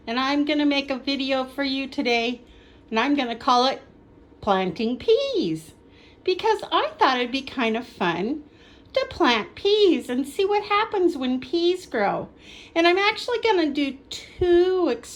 and I'm going to make a video for you today, and I'm going to call it Planting Peas, because I thought it'd be kind of fun to plant peas and see what happens when peas grow. And I'm actually going to do two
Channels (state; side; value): identical; both; correlation 1.00